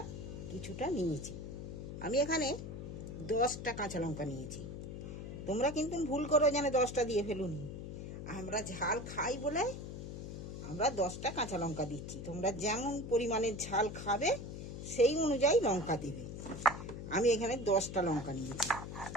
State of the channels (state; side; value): noise; left; hum, 8 dB below the sound